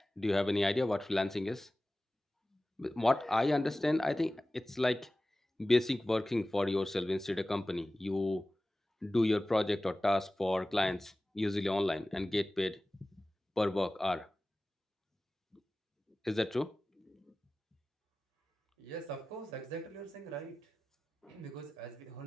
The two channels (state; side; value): normal; both; correlation 0.96